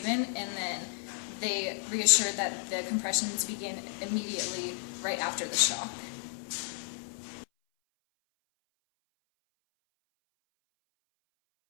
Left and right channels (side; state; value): right; silent; 56 dB below the other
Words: and then they reassure that the compressions begin immediately right after the shock.